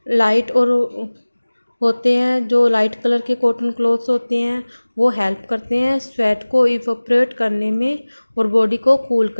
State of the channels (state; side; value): inverted; both; correlation -1.00